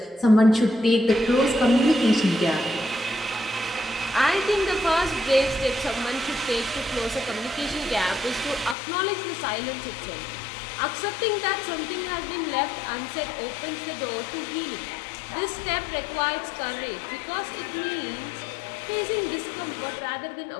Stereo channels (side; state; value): right; drops out; at 8.8 s